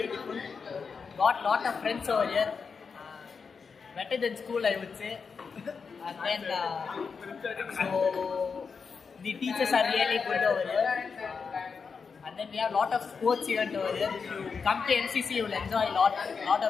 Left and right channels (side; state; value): right; quieter; 5.5 dB